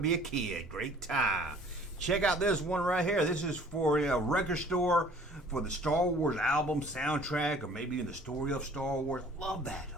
a kid. Great time. Check out this one right here. This is for a record store for the Star Wars album soundtrack, or maybe in the story of Star Wars. I love that.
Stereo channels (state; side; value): normal; both; correlation 0.52